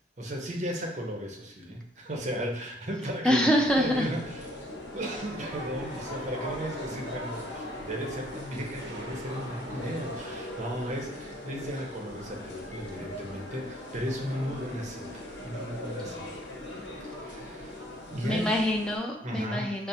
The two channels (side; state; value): both; normal; correlation 0.63